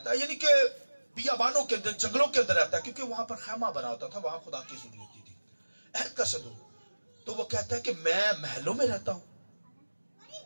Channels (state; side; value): inverted; both; correlation -1.00